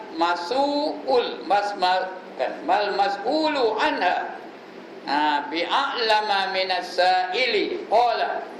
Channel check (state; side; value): identical; both; correlation 1.00